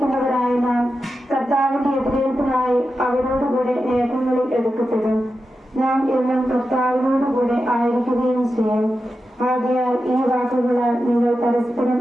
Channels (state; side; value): normal; both; correlation 0.90